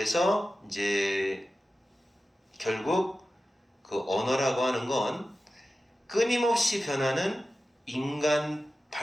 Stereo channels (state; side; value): normal; both; correlation 0.94